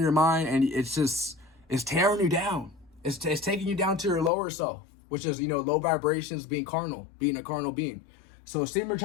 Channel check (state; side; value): drops out; right; at 4.3 s